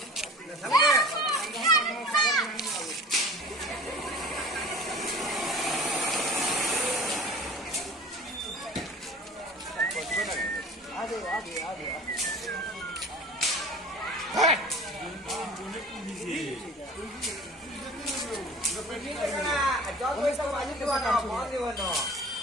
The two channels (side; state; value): both; normal; correlation 0.42